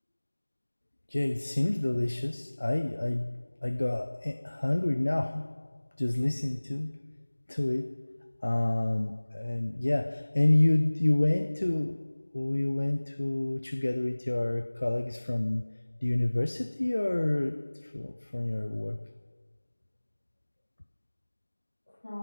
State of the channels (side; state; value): both; inverted; correlation -1.00